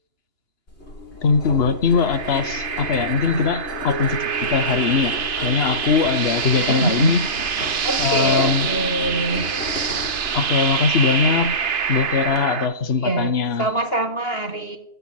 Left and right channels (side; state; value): right; late; 2.9 ms